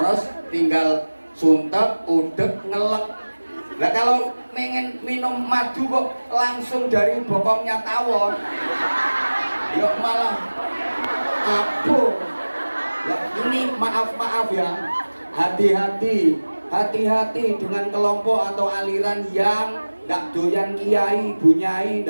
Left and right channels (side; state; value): both; inverted; correlation -1.00